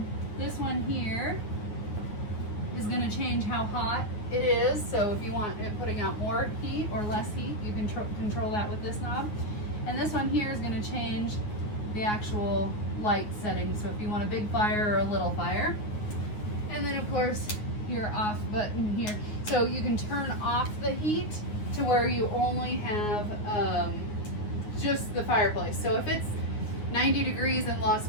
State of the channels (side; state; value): right; late; 9.4 ms